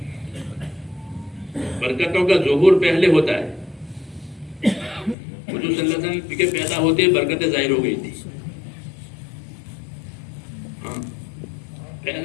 برکتوں کا ظہور پہلے ہوتا ہے. حضور صلی اللہ علیہ وسلم کے پیدا ہوتے برکتیں ظاہر ہو گئی تھی. ہاں،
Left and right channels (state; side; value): drops out; right; at 5.2 s